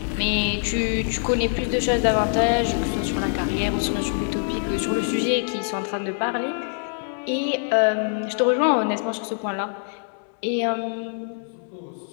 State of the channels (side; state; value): right; silent; 62 dB below the other